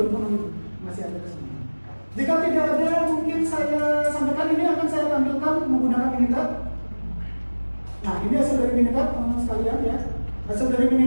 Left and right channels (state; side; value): inverted; both; correlation -1.00